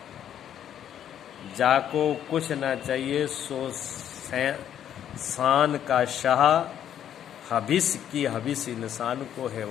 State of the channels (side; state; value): right; quieter; 10.1 dB